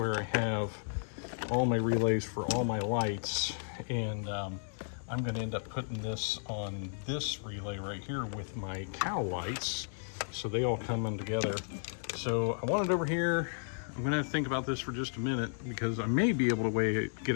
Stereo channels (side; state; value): right; silent; 55 dB below the other